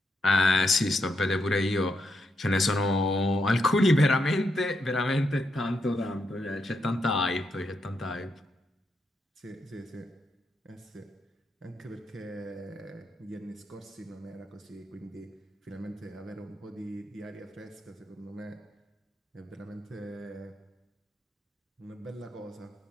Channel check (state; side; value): normal; both; correlation 0.82